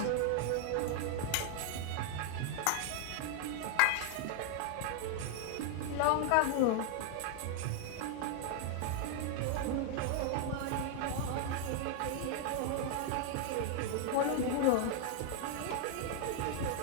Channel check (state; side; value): different; both; correlation 0.00